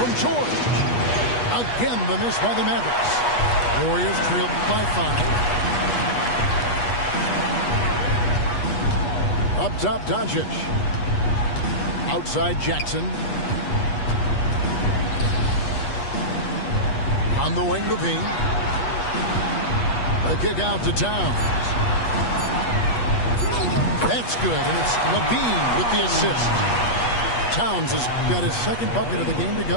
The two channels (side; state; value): right; late; 8.3 ms